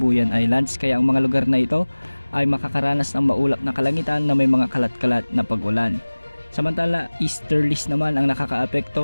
Islands, kaya ang mga lugar na ito ay makakaranas ng maulap na kalangitan na may mga kalat-kalat na pag-ulan. Samantala, easterlies naman ang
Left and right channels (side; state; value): both; inverted; correlation -1.00